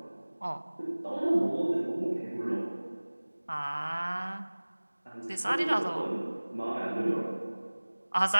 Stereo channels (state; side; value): inverted; both; correlation -1.00